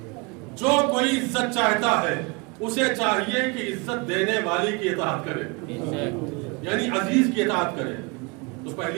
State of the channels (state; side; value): quieter; left; 29.0 dB